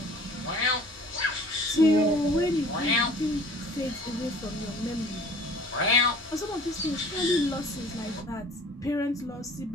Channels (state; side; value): normal; both; correlation 0.48